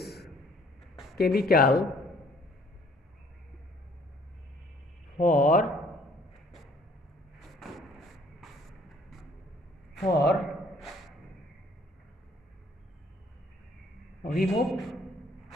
chemical for remove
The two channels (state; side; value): normal; both; correlation 0.59